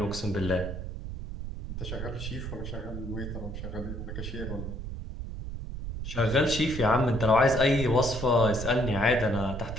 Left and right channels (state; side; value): noise; right; rumble, 7 dB below the sound